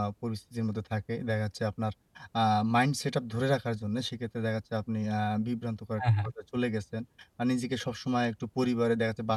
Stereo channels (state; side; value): identical; both; correlation 1.00